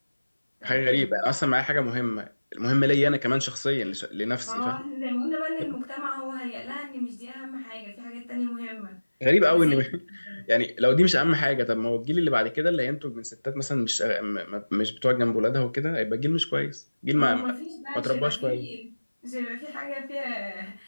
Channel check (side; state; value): both; inverted; correlation -1.00